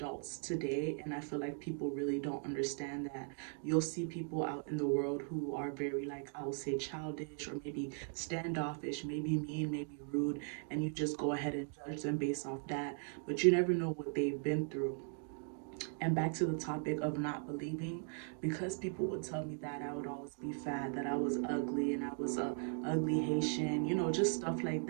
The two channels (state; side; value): silent; left; 52 dB below the other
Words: today, and I feel like people really don't understand that. You'll see people out in the world who are very, like, I will say, childish or maybe standoffish, maybe mean, maybe rude, and you just go ahead and judge them based off that, but you never know what they've been through. And back to the topic of not believing, because people would tell me that I would always be fat, that I was ugly, and I was a ugly Haitian, just stuff like